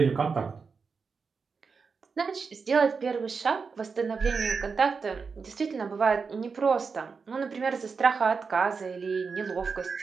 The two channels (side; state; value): left; quieter; 5.2 dB